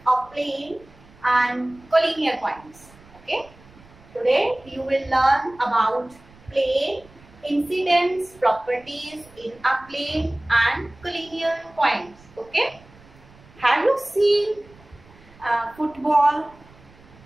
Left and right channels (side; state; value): right; noise; rumble, 25 dB below the sound